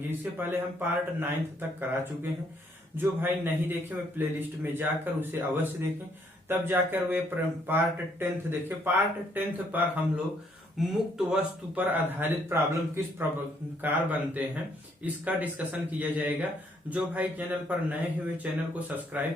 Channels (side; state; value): both; normal; correlation 0.69